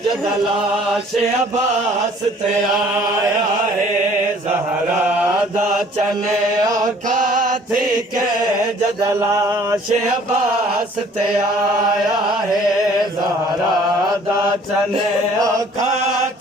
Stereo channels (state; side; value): normal; both; correlation 0.55